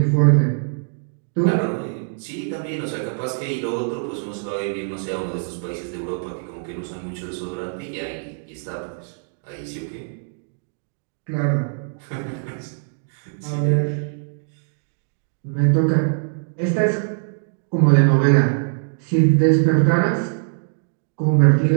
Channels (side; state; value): left; silent; digital silence